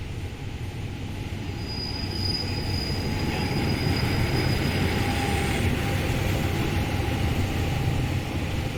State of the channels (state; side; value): identical; both; correlation 1.00